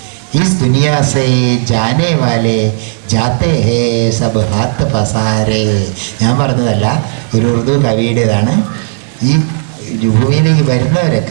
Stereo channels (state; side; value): silent; left; digital silence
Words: ഇസ് ദുനിയാ സേ ജാനെ വാലെ ജാത്തെ ഹേ സബ് ഹാത്ത് പസാരേ. ഞാൻ പറഞ്ഞതല്ല, ഒരു ഉറുദു കവിയുടേതാണ്. ഈ ഭൂമിയിലേക്ക്